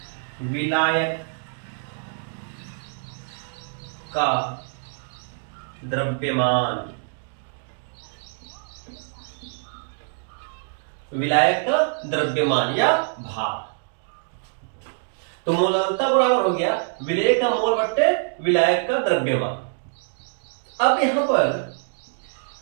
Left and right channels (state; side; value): silent; left; digital silence